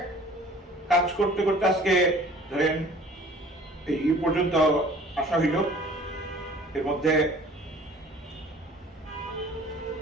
কাজ করতে করতে আজকে ধরেন এই পর্যন্ত আসা হইল। এর মধ্যে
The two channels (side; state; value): both; normal; correlation 0.50